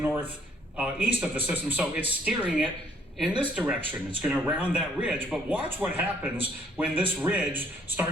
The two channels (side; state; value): both; normal; correlation 0.65